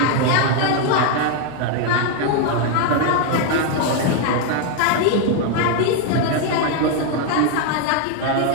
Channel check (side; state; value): both; different; correlation 0.01